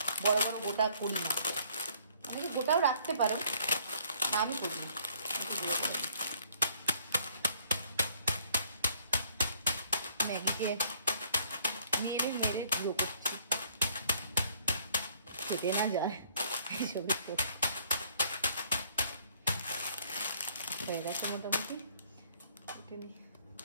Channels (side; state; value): both; inverted; correlation -0.60